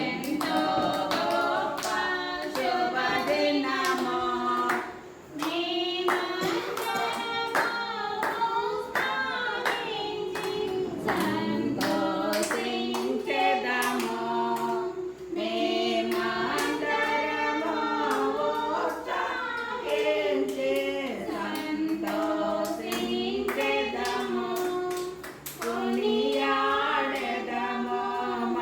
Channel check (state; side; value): identical; both; correlation 1.00